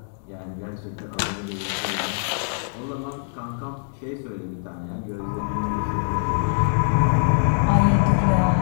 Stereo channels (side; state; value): right; silent; digital silence